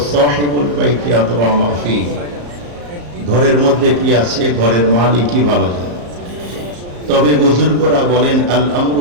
সাহিবুল বাইতি আদরা মা ফি, ঘরের মধ্যে কি আছে ঘরের মালিকই ভালো জানে। তবে বুজুর্গরা বলেন আল আমরু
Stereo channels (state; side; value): late; left; 34 ms